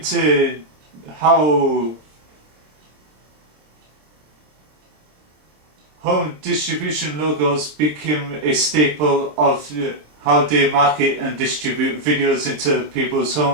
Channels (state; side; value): late; left; 27 ms